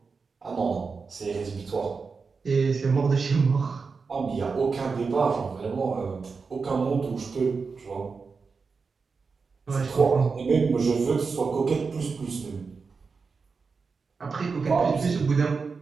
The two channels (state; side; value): quieter; left; 4.9 dB